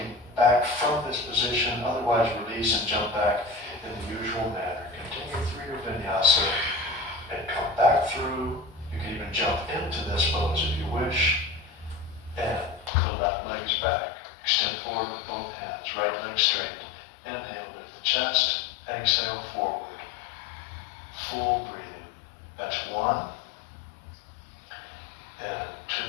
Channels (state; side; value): drops out; right; at 12.9 s